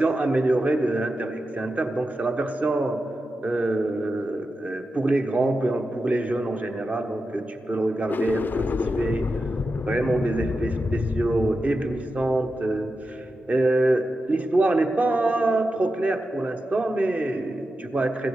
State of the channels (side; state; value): both; normal; correlation 0.90